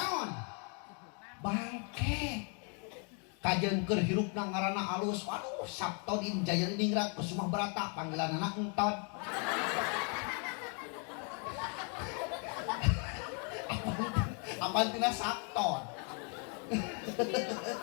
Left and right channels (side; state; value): right; quieter; 38.7 dB